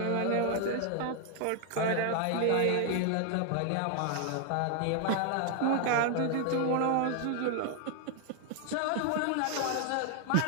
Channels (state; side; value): different; both; correlation 0.00